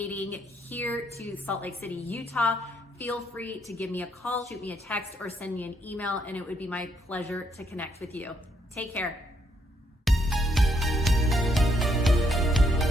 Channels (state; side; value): normal; both; correlation 0.73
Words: here to Salt Lake City, Utah, feel free to give me a call, shoot me a text, or send me an email, and it would be my pleasure to connect with you. Take care.